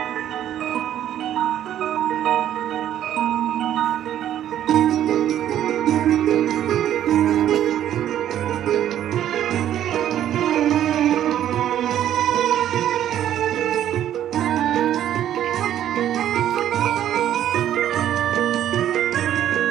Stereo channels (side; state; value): left; quieter; 11.2 dB